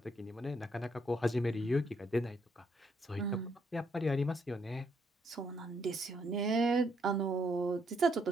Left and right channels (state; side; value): normal; both; correlation 0.73